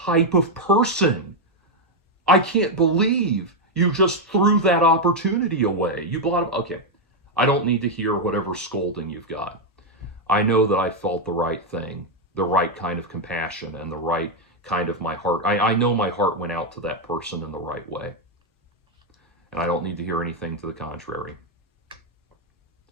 of person. I can't believe you just threw that opportunity away. You blot. Okay, I don't need to hear whatever scolding you've got. I know that I felt the right thing, the right kind of compassion, and the right kind of my heart. I know my heart went out to that person in the right way. And I don't need to hear anything to the contrary.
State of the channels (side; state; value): both; normal; correlation 0.02